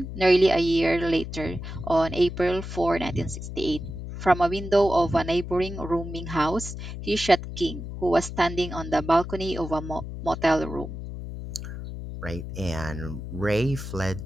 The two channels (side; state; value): left; noise; hum, 8 dB below the sound